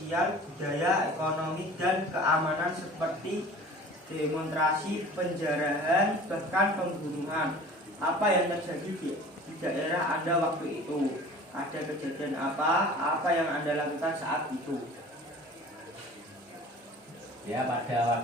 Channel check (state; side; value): normal; both; correlation 0.43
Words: budaya, ekonomi, dan keamanan, seperti demonstrasi, penjarahan, bahkan pembunuhan. Apa yang terjadi di daerah Anda waktu itu? Ada kejadian apa? Apa yang Anda lakukan saat itu? Ya, pada